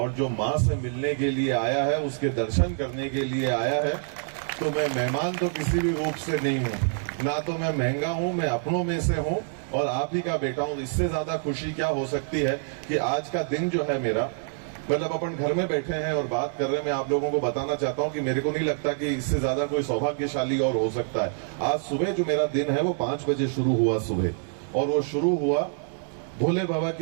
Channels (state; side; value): silent; left; digital silence